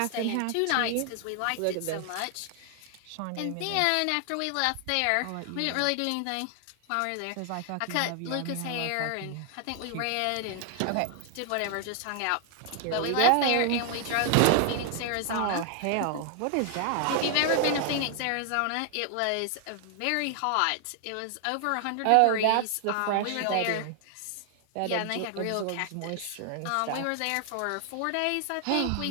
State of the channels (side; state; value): both; different; correlation 0.00